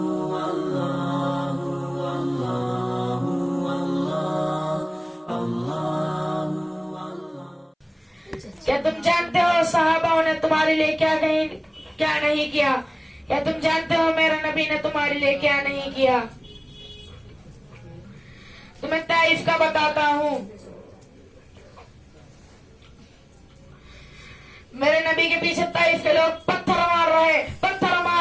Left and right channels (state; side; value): identical; both; correlation 1.00